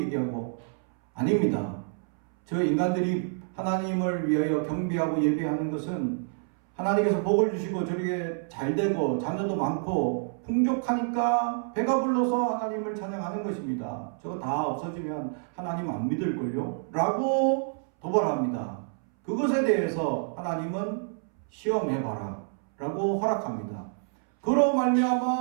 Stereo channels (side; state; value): left; silent; 59 dB below the other